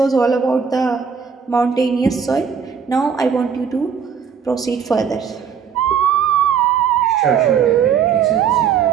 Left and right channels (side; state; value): left; quieter; 7.0 dB